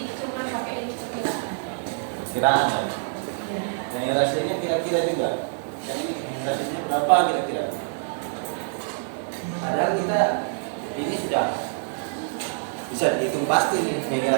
perkiraan ya. Yang rasionya kira-kira juga. Yang ini rasionya berapa kira-kira? Padahal kita ini sudah bisa dihitung pasti nih. Yang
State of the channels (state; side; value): silent; left; digital silence